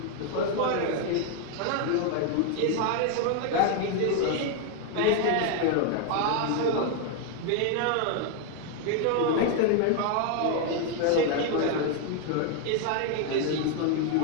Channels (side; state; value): both; different; correlation 0.01